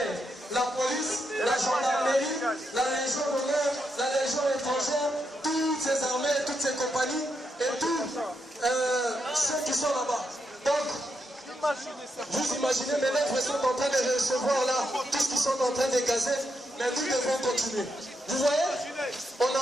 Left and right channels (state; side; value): normal; both; correlation 0.82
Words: La police, la gendarmerie, la Légion d'honneur, la Légion étrangère, toutes ces armées, toutes ces compagnies et tous ceux qui sont là-bas. Donc, vous imaginez, mes lèvres sont en train de recevoir là tout ce qu'ils sont en train de gazer, mais nous devons continuer. Vous voyez, on n'a